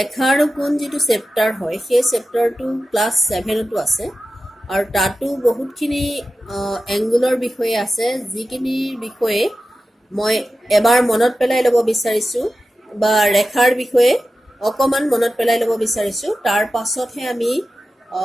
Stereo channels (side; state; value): both; normal; correlation 0.93